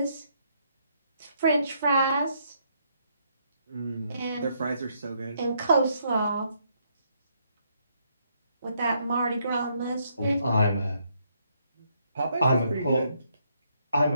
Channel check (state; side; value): inverted; both; correlation -0.73